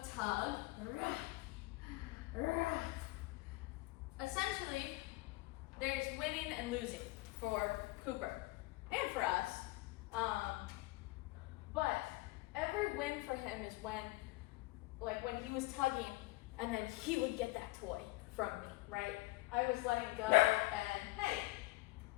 tug, Essentially, there's winning and losing for Cooper and for us. But every win for him is when he was tugging and then he would get that toy from me, right? I was letting go and, hey,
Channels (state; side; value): quieter; right; 21.3 dB